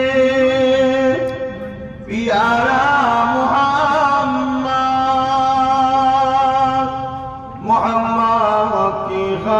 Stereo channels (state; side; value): identical; both; correlation 1.00